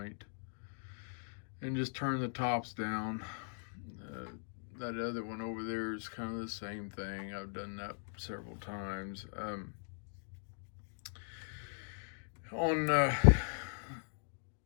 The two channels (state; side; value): silent; right; digital silence